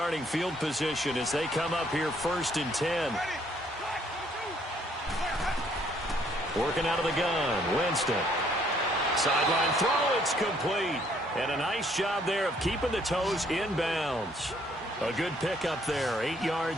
field position as they come up here 1st and 10. Working out of the gun, Winston. Sideline throw, it's complete. And a nice job there of keeping the toes in bounds. A good pickup there, 8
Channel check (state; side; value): normal; both; correlation 0.65